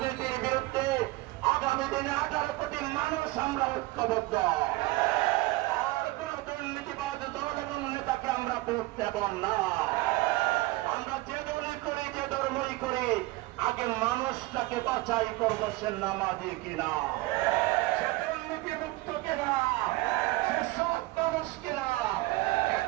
বিরুদ্ধে আগামী দিনে 18 কোটি মানুষ আমরা ঐক্যবদ্ধ। আর কোন দুর্নীতিবাদ দল এবং নেতাকে আমরা ভোট দেব না। আমরা যে দলে করি, যে ধর্মই করি, আগে মানুষটাকে বাছাই করবো, সে নামাজি কিনা, সে দুর্নীতি মুক্ত কিনা, সে সৎ মানুষ কিনা।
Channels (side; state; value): left; quieter; 20.6 dB